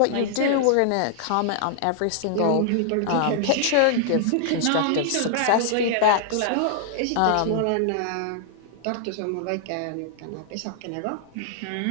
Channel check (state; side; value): different; both; correlation -0.01